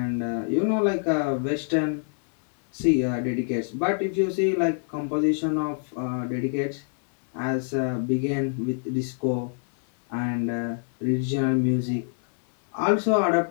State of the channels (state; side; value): silent; right; 61 dB below the other